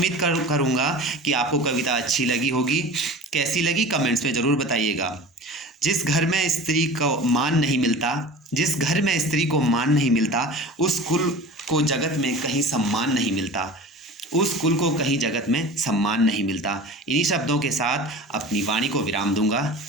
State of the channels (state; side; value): normal; both; correlation 0.37